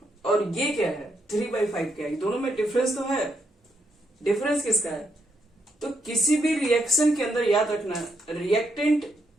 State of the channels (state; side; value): normal; both; correlation 0.77